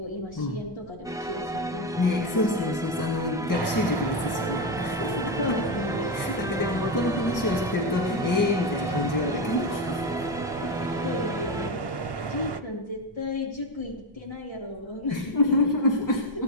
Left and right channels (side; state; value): both; normal; correlation 0.13